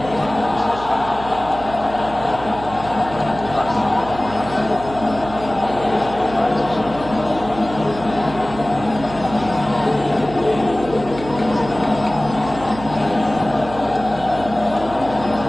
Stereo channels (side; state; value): right; noise; hum, 13 dB below the sound